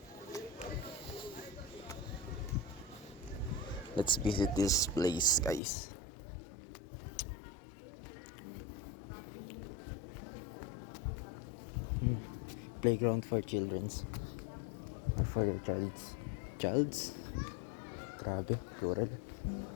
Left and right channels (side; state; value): right; drops out; at 5.6 s